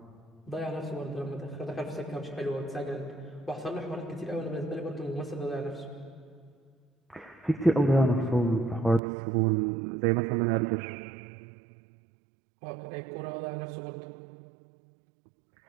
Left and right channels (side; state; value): left; drops out; at 9.0 s